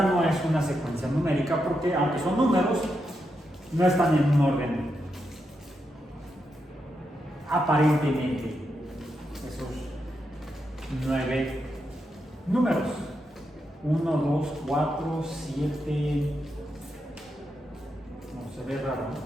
no es una secuencia numérica porque, aunque son números, no están en un orden aparentemente. Esos 9 números. 1, 2, 4, 7. No se ve raro,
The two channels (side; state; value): both; normal; correlation 0.84